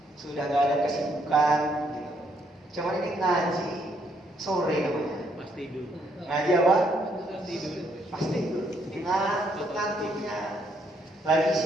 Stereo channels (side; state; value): both; normal; correlation 0.72